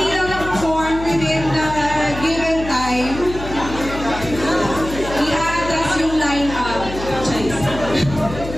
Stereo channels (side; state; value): left; noise; hum, 10 dB below the sound